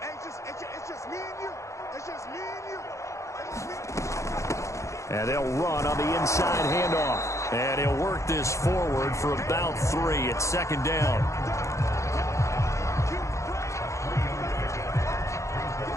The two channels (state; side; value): late; right; 0.15 ms